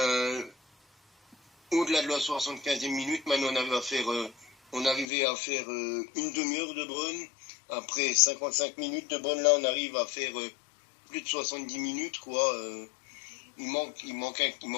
au-delà de la 75e minute, maintenant on arrivait à faire une demi-heure de Brun. Après 55 minutes de Brun, là, on arrive à faire plus de 70 minutes, quoi. Il manquait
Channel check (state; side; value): drops out; right; at 5.1 s